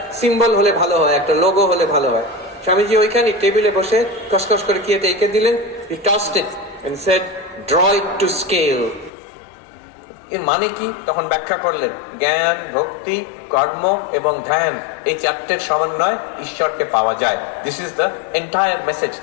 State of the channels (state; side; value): drops out; right; at 9.1 s